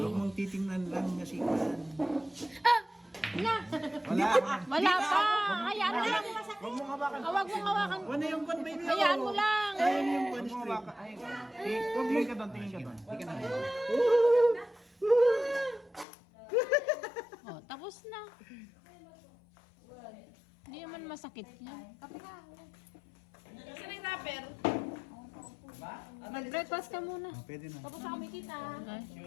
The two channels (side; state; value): right; drops out; at 16.1 s